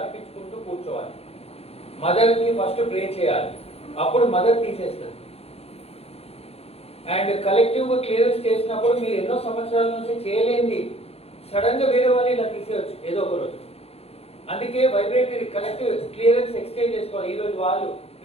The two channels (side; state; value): right; late; 0.29 ms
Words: అర్పించుకుంటూ కూర్చోవాలి. మదర్కి ఫస్ట్ ప్రే చేయాలి, అప్పుడు మదర్ తీసేస్తుంది. అండ్ కలెక్టివ్గా క్లియరెన్స్ చేసినప్పుడు మీరు ఎన్నో సంవత్సరాల నుంచి చేయలేంది సడన్గా వేరే వాళ్ళు ఇలా తీసేయచ్చు ఏదో ఒక రోజు. అందుకే వైబ్రేటరీ కలెక్టివ్ క్లియరెన్స్ ఎక్స్చేంజ్ చేసుకోవాలి. ఈరోజు వాళ్ళు,